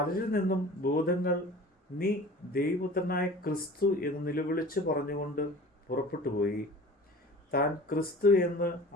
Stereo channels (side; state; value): both; normal; correlation 0.42